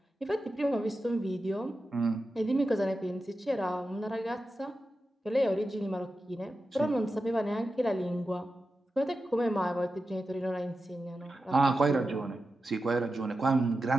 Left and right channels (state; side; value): normal; both; correlation 0.91